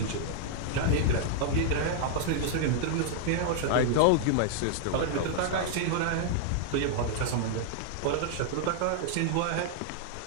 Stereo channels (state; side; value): different; both; correlation -0.01